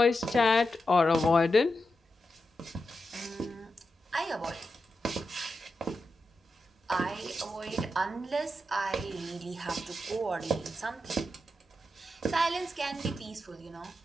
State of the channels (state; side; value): normal; both; correlation 0.88